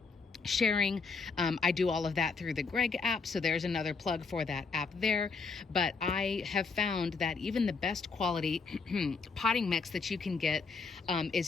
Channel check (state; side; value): quieter; right; 4.7 dB